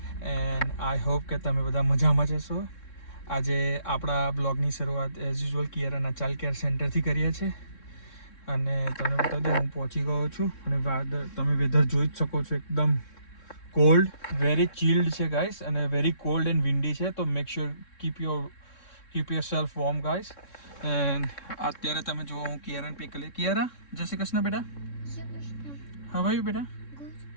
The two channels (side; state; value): right; late; 3.6 ms